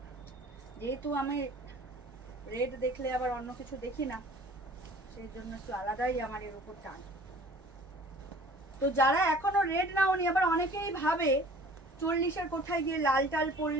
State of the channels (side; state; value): both; normal; correlation 0.48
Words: যেহেতু আমি রেড দেখলে আবার অন্য কিছু দেখি না, সেই জন্য একটু আলাদাই আমার এর উপর টান। তো যারা এখনো রেড নাওনি, আবার অনেকেই ভাবে 40-এর কোঠায় গিয়ে লাল টাল